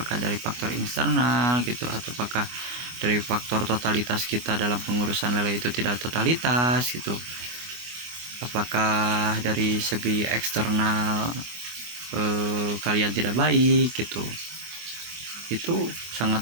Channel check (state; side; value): late; left; 25 ms